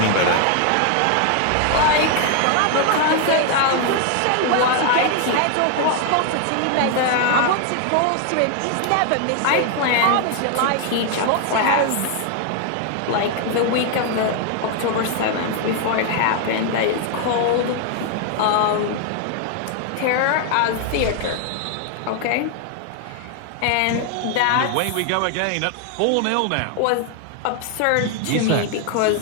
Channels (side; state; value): both; different; correlation 0.00